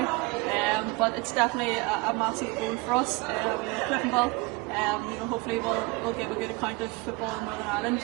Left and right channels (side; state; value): left; quieter; 24.5 dB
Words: but it's definitely a massive goal for us. Cliftonville, hopefully we'll give a good account of football in Northern Ireland